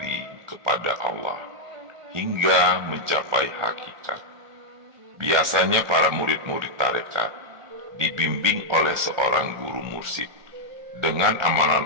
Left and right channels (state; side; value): late; left; 1.4 ms